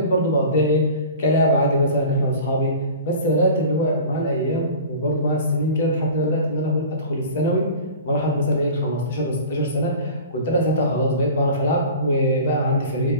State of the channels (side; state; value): both; inverted; correlation -0.39